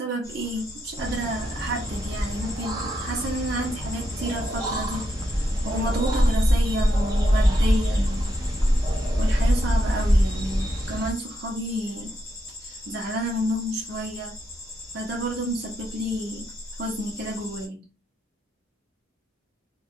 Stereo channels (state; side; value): normal; both; correlation 0.81